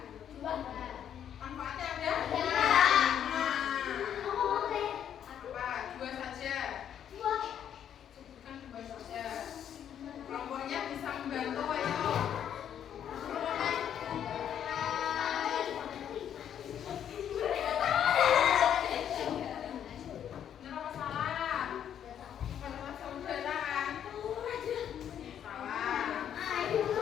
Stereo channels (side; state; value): right; quieter; 9.4 dB